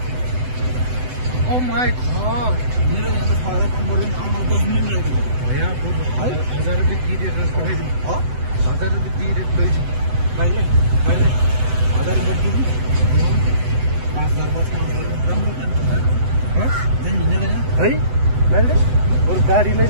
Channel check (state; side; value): late; left; 7.9 ms